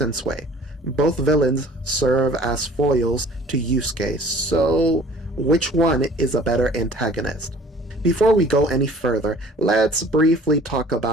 Both villains serve as foils to Yusuke, so which one is a better antagonist? Before we go any further, let's briefly talk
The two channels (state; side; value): normal; both; correlation 0.50